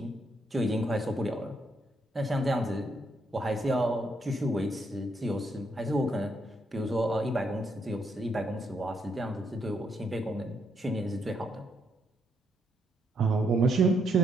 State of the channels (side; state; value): both; normal; correlation 0.76